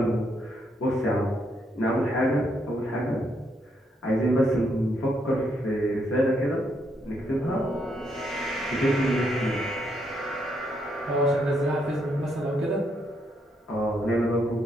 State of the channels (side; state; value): both; normal; correlation 0.76